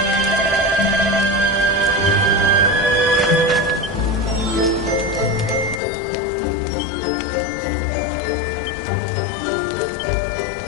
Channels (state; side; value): drops out; right; at 5.8 s